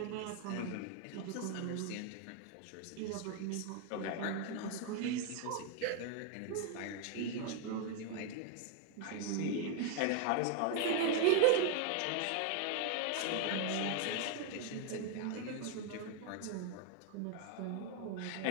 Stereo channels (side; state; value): both; different; correlation 0.01